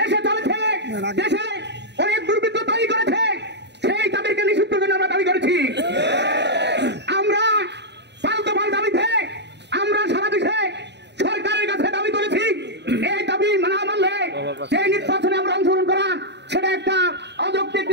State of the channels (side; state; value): left; late; 0.50 ms